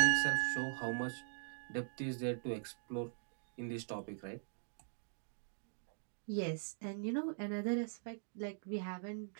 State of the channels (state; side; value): silent; left; digital silence